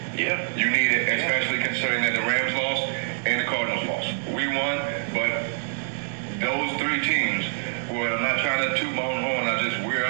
Yeah. You need it, especially considering that the Rams lost and the Cardinals lost. We well, I'm not trying to toot my own horn. We're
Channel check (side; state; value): left; silent; digital silence